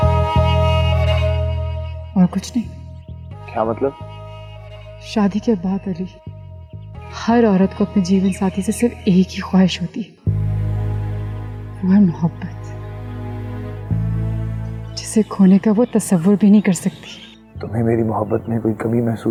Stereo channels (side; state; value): both; identical; correlation 1.00